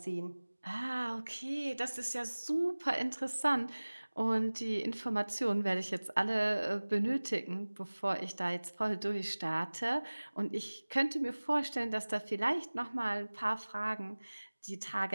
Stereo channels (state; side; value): inverted; both; correlation -1.00